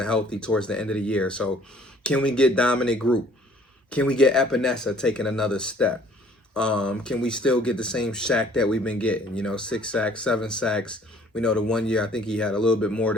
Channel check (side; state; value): both; normal; correlation 0.56